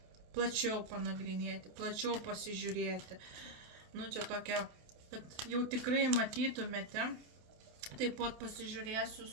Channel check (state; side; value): late; left; 28 ms